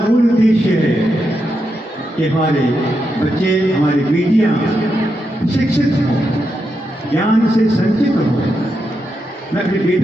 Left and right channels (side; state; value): both; normal; correlation 0.85